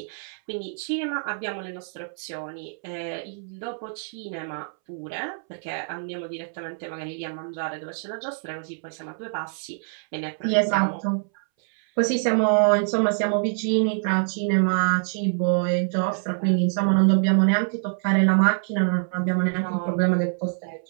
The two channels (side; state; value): left; silent; 62 dB below the other